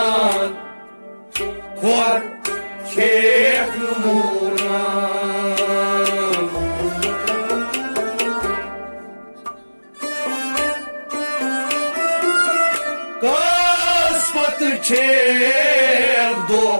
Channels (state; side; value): inverted; both; correlation -1.00